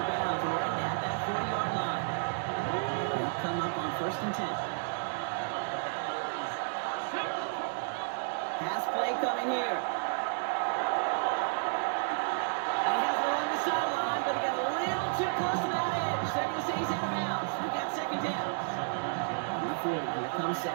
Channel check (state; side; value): silent; left; digital silence